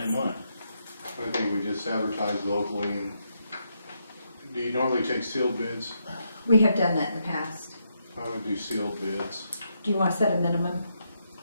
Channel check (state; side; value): inverted; both; correlation -0.80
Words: one. I think we just advertise locally, and do you normally take sealed bids? We have done that in the past. I would do sealed bids. Do you want to set a minimum?